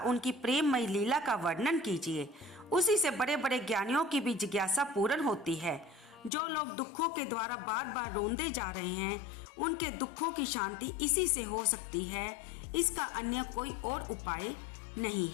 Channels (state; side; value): drops out; right; at 6.3 s